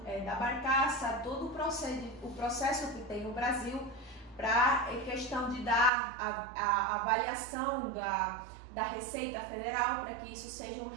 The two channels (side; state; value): left; drops out; at 5.9 s